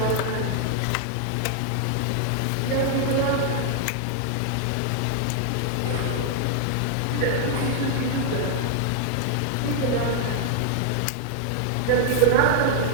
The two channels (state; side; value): different; both; correlation 0.00